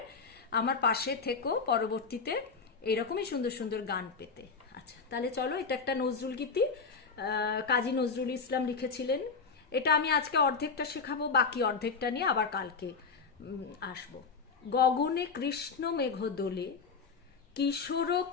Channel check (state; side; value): quieter; right; 5.0 dB